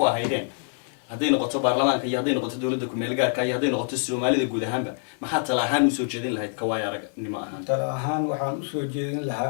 ahaydeen hadday noqoto baarlamaanka iyo hadday noqoto dowladda ku-meel gaarka iyo hadday noqoto soomaalida guud ahaanba maxaa tala ahaan usoo jeedin lahayd kawaaya aragnimo ahaan tala ahaan waxaan usoo jeedin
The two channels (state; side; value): silent; right; digital silence